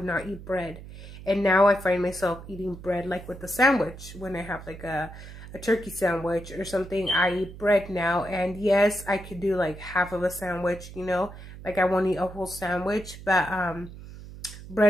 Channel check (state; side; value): noise; right; hum, 14 dB below the sound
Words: not eat bread, and now I find myself eating bread like with a sandwich. When I have like a turkey sandwich or something, I eat bread now. And yes, I could do like half of a sandwich, you know, like I won't eat a whole sandwich, but